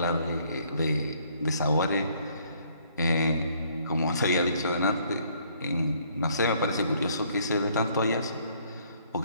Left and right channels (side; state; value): both; inverted; correlation -0.64